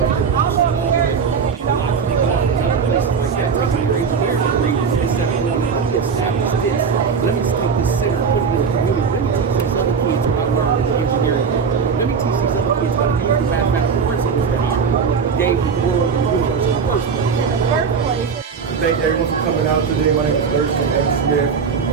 engineering degree instead of going and let me establish this. Let me take this center and put it in the community. Let me teach these other kids what I learned in the engineering degree. Let me teach these other kids how to use the mathematical principles that our people gave the world and the universe in the first place. Thank everyone for coming out today. My name is Thurston M. Smith.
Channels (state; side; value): quieter; left; 5.9 dB